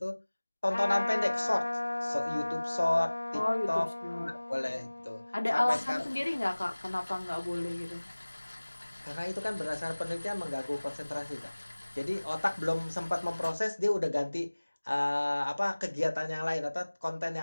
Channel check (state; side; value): inverted; both; correlation -1.00